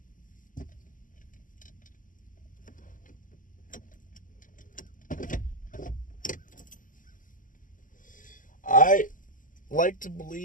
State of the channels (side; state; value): right; late; 0.38 ms